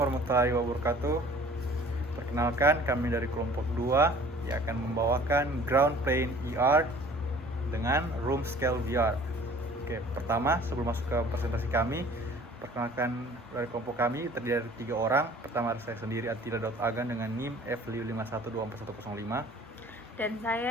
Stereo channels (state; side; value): normal; both; correlation 0.50